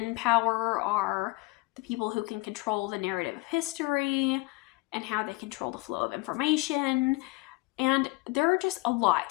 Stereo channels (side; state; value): right; quieter; 23.1 dB